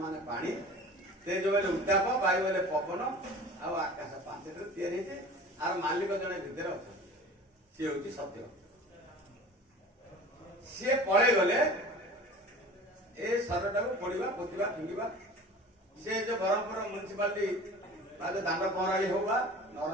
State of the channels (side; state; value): both; normal; correlation 0.40